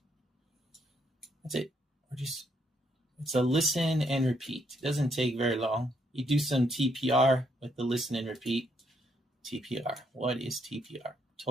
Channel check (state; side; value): normal; both; correlation 0.73